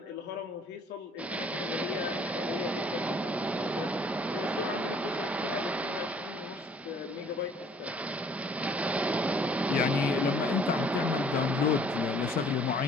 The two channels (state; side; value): normal; both; correlation 0.58